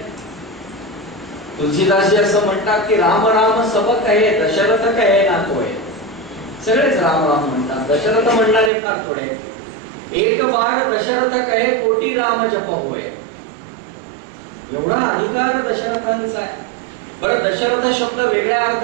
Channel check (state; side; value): drops out; left; at 8.7 s